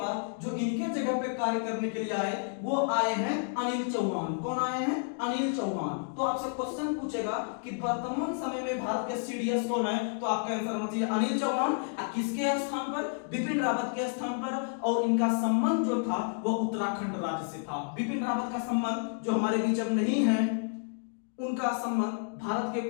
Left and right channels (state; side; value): silent; right; digital silence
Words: जो इनके जगह पे कार्य करने के लिए आए वो आए हैं अनिल चौहान। कौन आए हैं? अनिल चौहान। तो आपसे क्वेश्चन पूछेगा कि वर्तमान समय में भारत के सीडीएस कौन है, तो आपका आंसर होना चाहिए अनिल चौहान। किसके स्थान पर? बिपिन रावत के स्थान पर। और इनका संबंध जो था वो उत्तराखंड राज्य से था। बिपिन रावत का संबंध जो हमारे बीच अब नहीं है, उनका संबंध भारत के